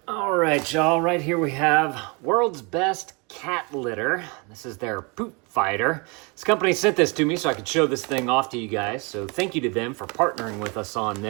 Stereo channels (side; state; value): left; quieter; 30.4 dB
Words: All right, y'all, right here we have world's best cat litter. This is their poop fighter. This company sent this to me so I could show this thing off to you guys. So thank you to them for partnering with us on